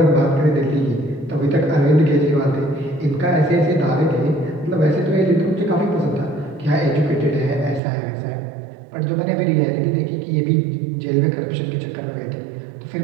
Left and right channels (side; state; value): left; drops out; at 7.8 s